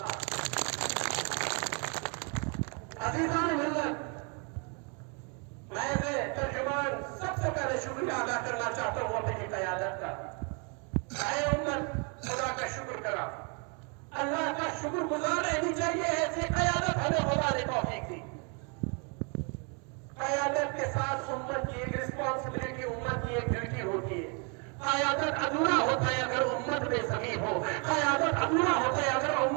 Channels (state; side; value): quieter; left; 35.5 dB